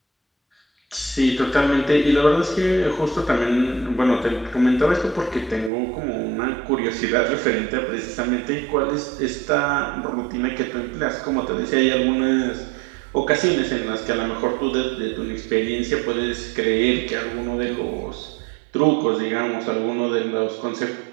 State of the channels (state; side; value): drops out; left; at 5.7 s